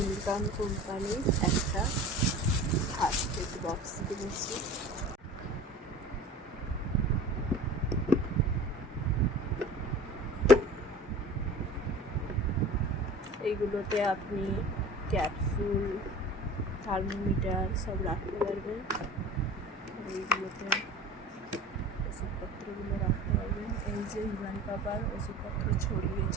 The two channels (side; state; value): both; normal; correlation 0.40